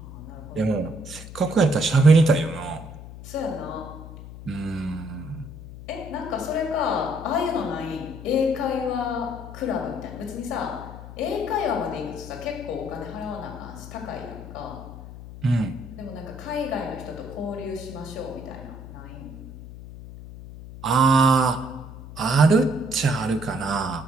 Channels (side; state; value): left; noise; hum, 13 dB below the sound